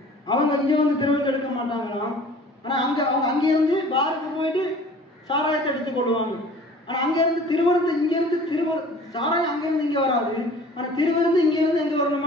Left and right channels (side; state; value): both; normal; correlation 0.47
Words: அவங்க இங்க திருவிருந்து எடுக்க மாட்டாங்களாம். ஆனா அவங்க அங்கிருந்து பாருக்கு போயிட்டு சாராயத்தை எடுத்துக் கொள்வாங்க. ஆனா அங்கிருந்து திருவிருந்து, சாராயம் அங்கிருந்து இங்க வராது. ஆனா திருவிருந்து இங்கிருந்து எங்க